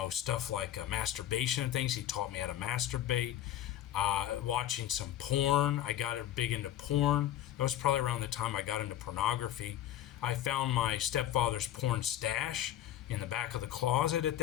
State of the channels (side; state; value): right; quieter; 12.1 dB